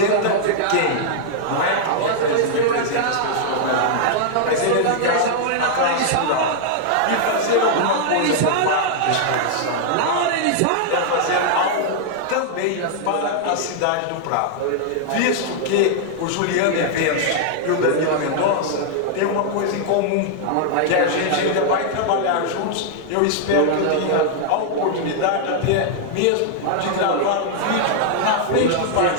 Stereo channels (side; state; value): both; different; correlation -0.01